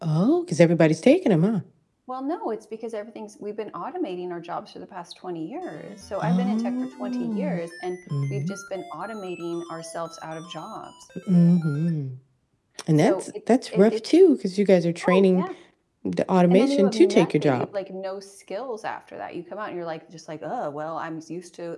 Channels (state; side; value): identical; both; correlation 1.00